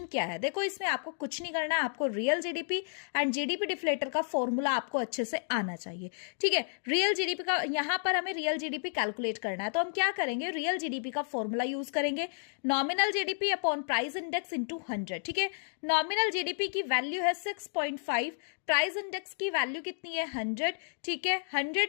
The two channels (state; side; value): silent; right; digital silence